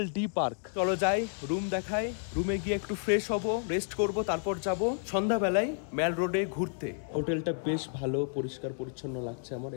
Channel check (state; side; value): silent; right; 57 dB below the other